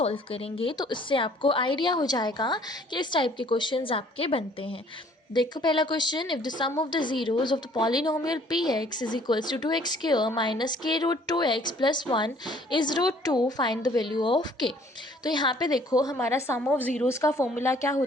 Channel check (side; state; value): both; normal; correlation 0.58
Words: करेंगे। तो इससे आपको आइडिया हो जाएगा कि इस टाइप के क्वेश्चंस आपके बनते हैं। देखो पहला question, if the sum of the zeros of the polynomial P X is equals to 2x square minus K root 2x plus 1 is root 2, find the value of K. तो यहाँ पे देखो हमारा सम ऑफ ज़ीरोज़ का formula क्या